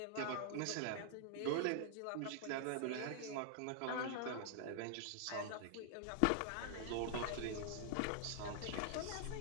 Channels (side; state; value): both; different; correlation 0.00